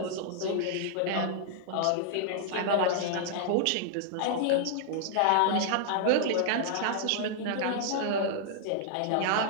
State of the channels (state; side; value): different; both; correlation -0.01